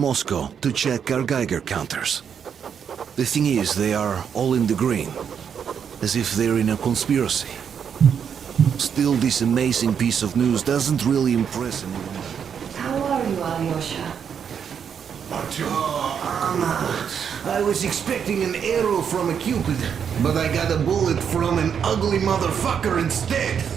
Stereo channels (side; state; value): left; quieter; 7.6 dB